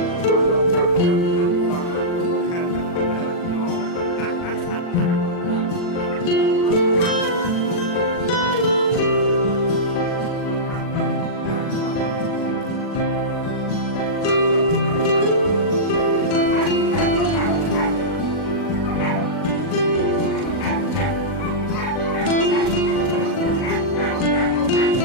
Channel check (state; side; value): late; right; 40 ms